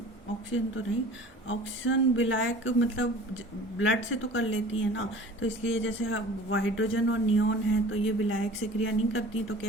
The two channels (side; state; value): both; normal; correlation 0.43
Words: ऑक्सीजन तो नहीं, ऑक्सीजन विलायक मतलब ब्लड से तो कर लेती है ना, तो इसलिए जैसे हाइड्रोजन और नियोन है तो ये विलायक से क्रिया नहीं करती, तो